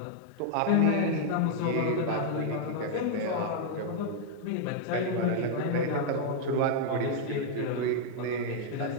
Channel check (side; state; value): both; different; correlation 0.00